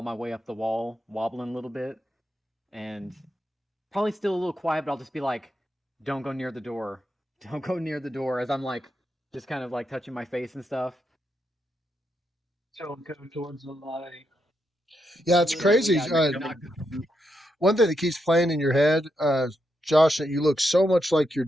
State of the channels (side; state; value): both; normal; correlation 0.82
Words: my way up the wall, wobbling a little bit, and probably still a little quiet, but I'll just be like, "Don't go near the door. Don't go near the door." As I'm like, just kind of like touching my face and stuff. Don't go towards the light. Yeah, it's crazy. Not One thing that keeps playing in your head, Josh, that you look so much like your